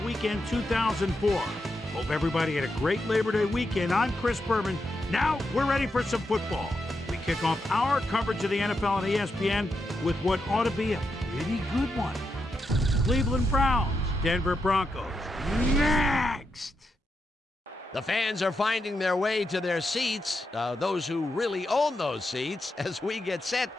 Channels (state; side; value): normal; both; correlation 0.85